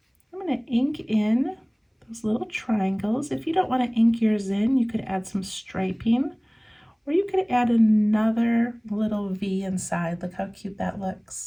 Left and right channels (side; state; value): both; identical; correlation 1.00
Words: I'm going to ink in those little triangles. If you don't want to ink yours in, you could add some striping, or you could add another little V inside. Look how cute that